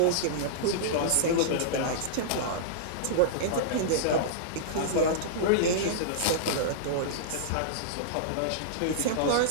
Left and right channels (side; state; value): both; different; correlation -0.02